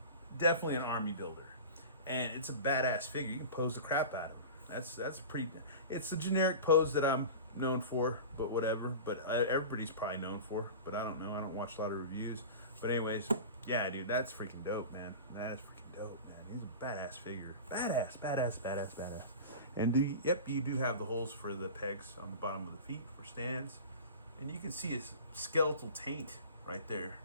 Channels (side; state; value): both; inverted; correlation -0.33